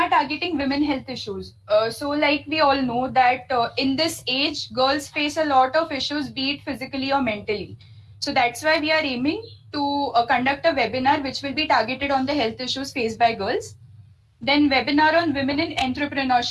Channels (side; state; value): both; identical; correlation 1.00